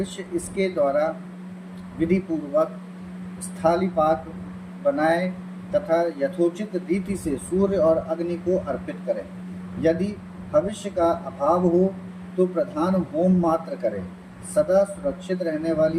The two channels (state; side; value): identical; both; correlation 1.00